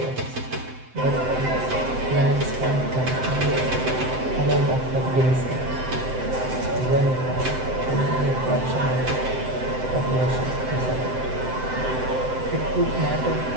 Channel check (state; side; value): late; left; 7.8 ms